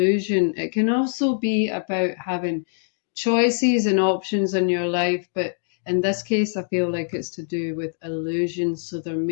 It can also be about having choices and options in your life, but in this case, I feel like it's to do with illusion. So there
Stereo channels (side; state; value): right; silent; digital silence